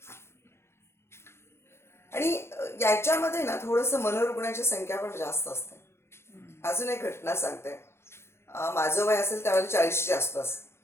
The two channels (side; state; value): right; late; 0.12 ms